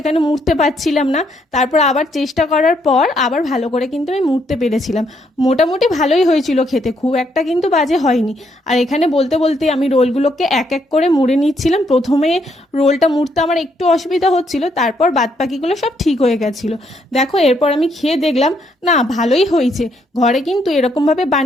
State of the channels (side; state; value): both; normal; correlation 0.73